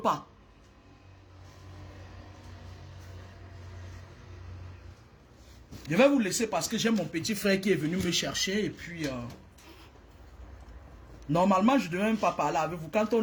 pas. Je vais vous laisser parce que j'ai mon petit frère qui est venu me chercher et puis... Normalement, je ne devais même pas parler avec vous. Quand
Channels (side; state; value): both; identical; correlation 1.00